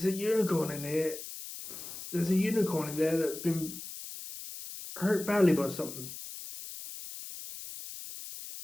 a unicorn in here. There's a unicorn in there that's been hurt badly by something.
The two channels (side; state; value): left; noise; hiss, 11 dB below the sound